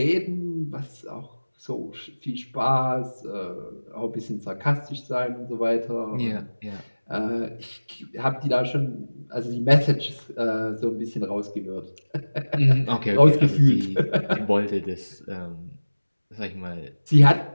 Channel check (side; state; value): both; inverted; correlation -1.00